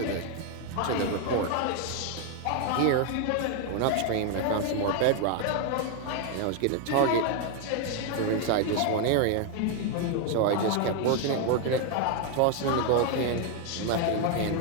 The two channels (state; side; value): different; both; correlation 0.01